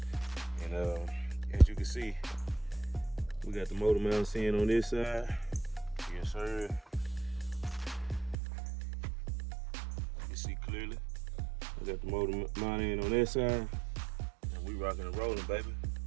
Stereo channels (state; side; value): drops out; left; at 8.3 s